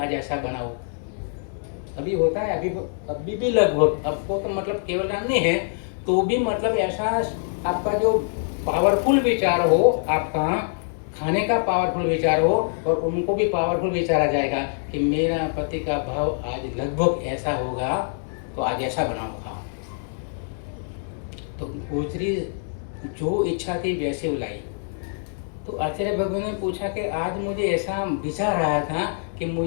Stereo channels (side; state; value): right; silent; digital silence